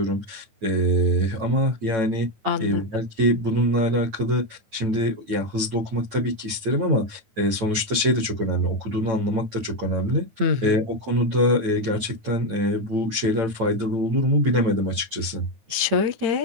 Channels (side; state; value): left; late; 9.4 ms